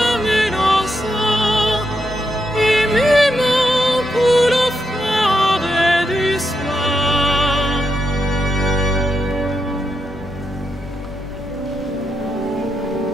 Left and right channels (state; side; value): normal; both; correlation 0.83